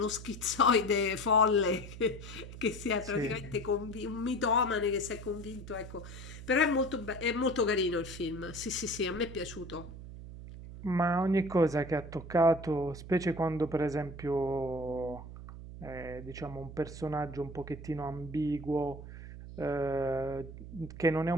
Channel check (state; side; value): noise; right; hum, 12 dB below the sound